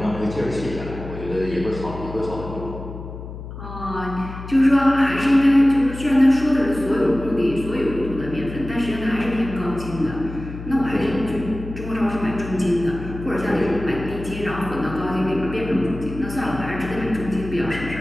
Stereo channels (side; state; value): left; noise; hum, 11 dB below the sound